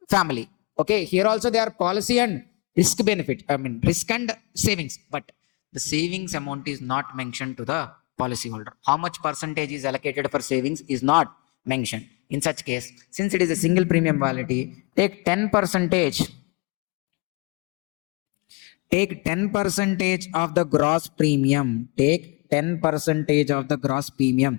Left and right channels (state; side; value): quieter; right; 29.3 dB